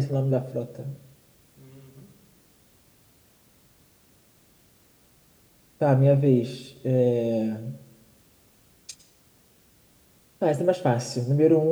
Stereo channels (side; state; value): both; identical; correlation 1.00